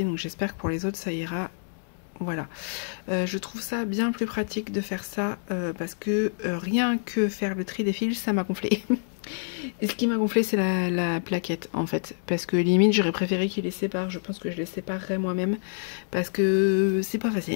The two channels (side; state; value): right; silent; 60 dB below the other